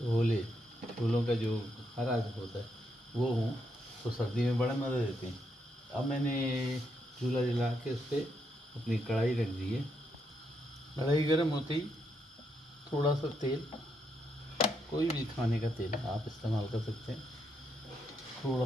होले, छोलों का जो हरा होता है वो हों तो सर्दी में बड़ा मज़ा देते हैं। अब मैंने चूल्हा जला के उस पर अपनी कढ़ाई रख दी है। कढ़ाई गर्म होते ही थोड़ा सा तेल, कोई भी खाने का तेल आप इस्तेमाल कर सकते हैं, थोड़ा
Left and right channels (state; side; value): normal; both; correlation 0.79